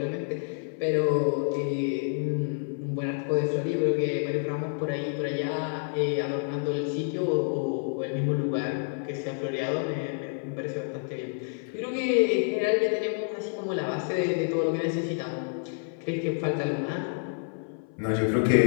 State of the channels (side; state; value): right; silent; 57 dB below the other